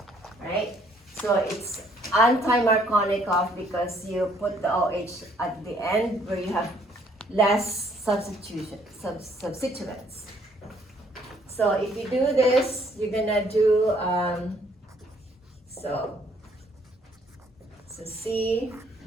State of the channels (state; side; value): normal; both; correlation 0.64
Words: right? So it's anti-Markovnikov because you put the OH at the end where you have less substituents. So if you do this, you're gonna do so C